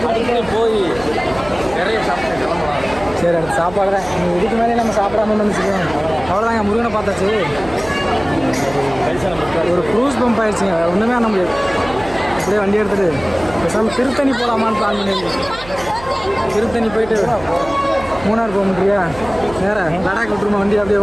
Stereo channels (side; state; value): right; noise; hum, 16 dB below the sound